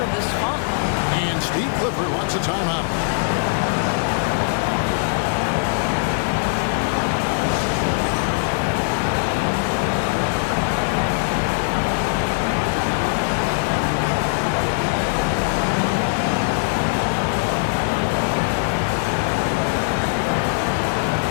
this funk. And Steve Clifford wants a timeout.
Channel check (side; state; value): right; silent; digital silence